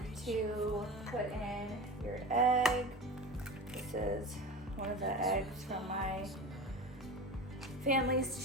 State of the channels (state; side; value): normal; both; correlation 0.30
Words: to put in your egg. This is one of the eggs from my